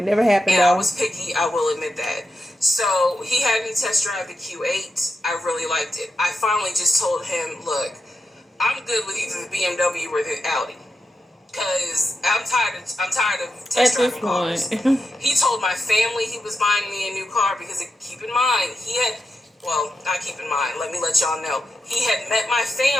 never happened. And I was picky, I will admit that. So he had me test drive the Q8. I really liked it. I finally just told him, look, I'm good with either the BMW or the Audi. Because I'm tired of test driving cars. He told my family he was buying me a new car because, keep in mind, let me let y'all know. He had met my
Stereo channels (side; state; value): both; normal; correlation 0.87